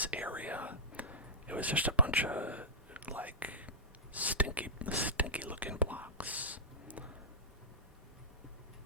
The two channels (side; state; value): both; normal; correlation -0.16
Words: area, it was just a bunch of like stinky looking blocks.